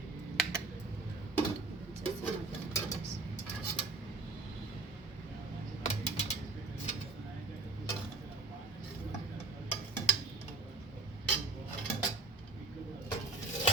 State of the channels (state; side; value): quieter; left; 3.8 dB